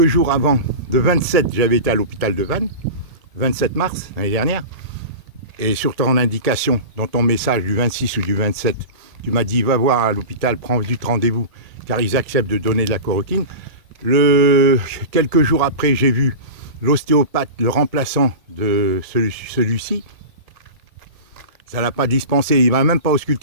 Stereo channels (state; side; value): late; left; 1.7 ms